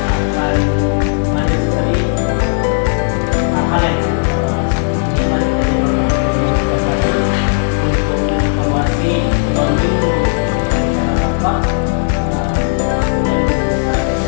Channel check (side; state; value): right; silent; digital silence